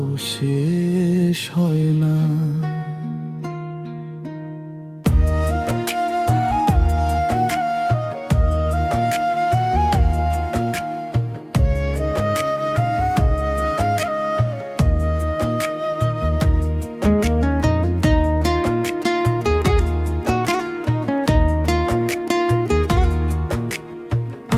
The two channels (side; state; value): both; identical; correlation 1.00